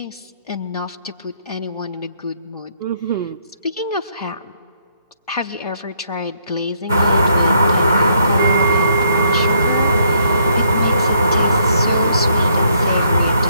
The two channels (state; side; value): inverted; both; correlation -0.69